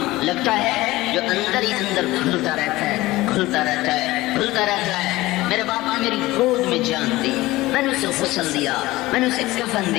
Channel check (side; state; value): right; quieter; 18.6 dB